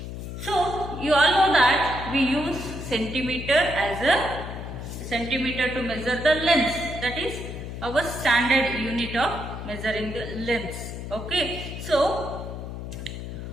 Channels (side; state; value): left; noise; hum, 8 dB below the sound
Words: So you all know that we use centimeter as a centimeter to measure the length, that is our standard unit of measuring the length. Okay, so